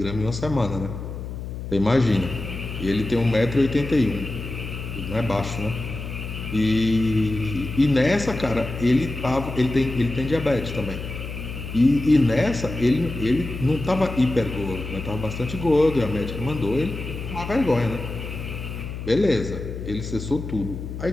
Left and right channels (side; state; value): left; noise; hum, 8 dB below the sound